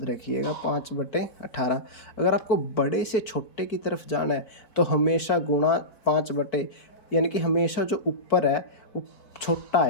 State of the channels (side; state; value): right; late; 4.6 ms